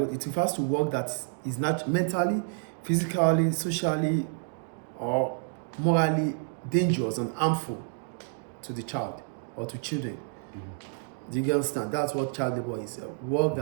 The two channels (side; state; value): left; silent; digital silence